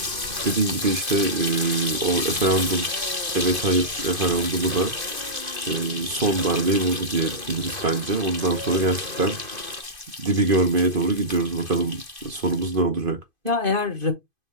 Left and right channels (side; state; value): left; late; 2.5 ms